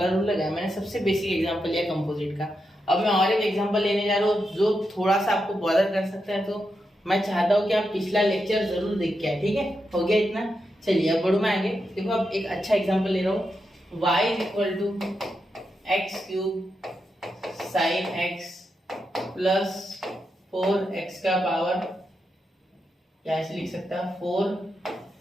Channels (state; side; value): normal; both; correlation 0.86